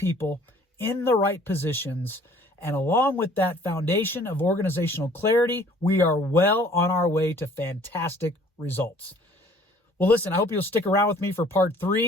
in the right positions. And along with that foundation of organizational clarity, we are well on our way to fantastic results. Well, listen, I hope you'll stick around with me for part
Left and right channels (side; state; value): both; normal; correlation 0.55